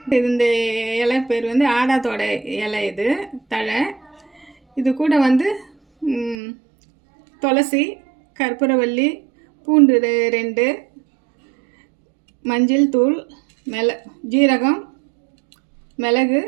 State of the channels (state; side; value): drops out; left; at 6.4 s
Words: இது. இந்த இலை பேர் வந்து ஆடாதோட இலை. இது தழை. இது கூட வந்து துளசி, கற்பூரவள்ளி, பூண்டு 2, மஞ்சள் தூள், ஜீரகம், மிளகு,